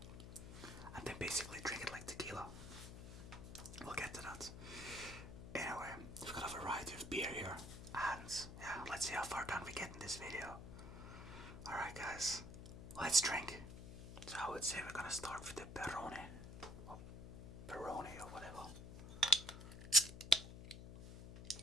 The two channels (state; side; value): noise; left; hum, 11 dB below the sound